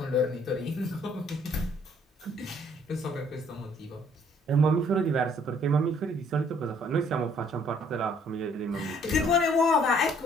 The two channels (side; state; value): both; normal; correlation 0.62